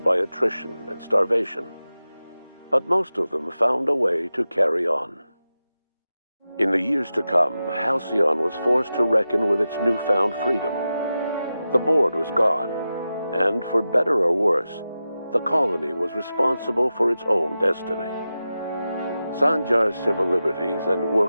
by attrition and starvation, but most of them found a way to carry on. In the years to come, Halcyon was forced to reckon with its newfound freedom. The board was gone, and for better or worse, the colony was responsible for its own destiny. Sanjar's civil liberties and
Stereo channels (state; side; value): inverted; both; correlation -0.92